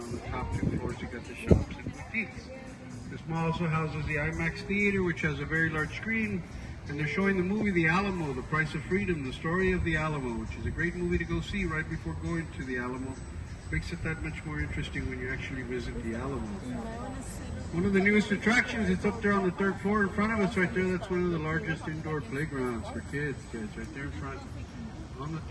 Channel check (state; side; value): identical; both; correlation 1.00